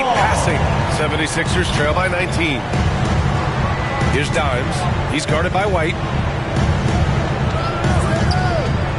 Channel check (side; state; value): both; identical; correlation 1.00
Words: passing. 76ers trail by 19. Here's Dimes. He's guarded by White.